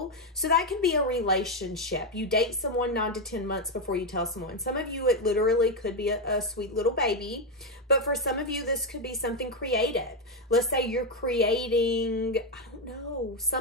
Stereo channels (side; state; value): both; normal; correlation 0.05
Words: So that could be a relationship. You date someone 9 to 10 months before you tell someone. Some of you, it literally could be a sweet little baby. But for some of you, this could be something creative. Let's say you're creating, I don't know,